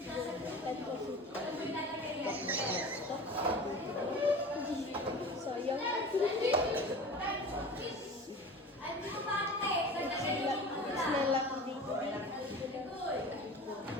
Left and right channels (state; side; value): normal; both; correlation 0.36